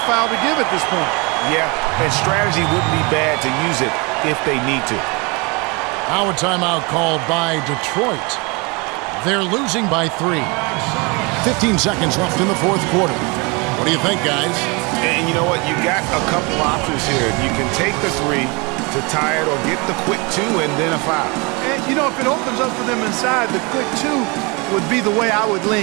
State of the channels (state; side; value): quieter; left; 28.7 dB